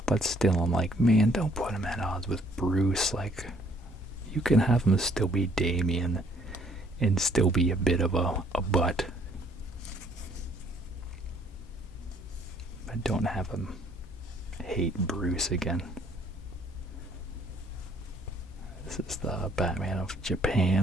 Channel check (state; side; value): normal; both; correlation 0.63